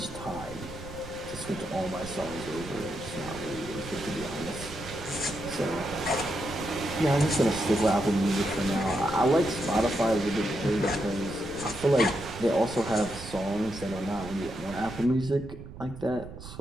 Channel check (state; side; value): noise; right; rumble, 13 dB below the sound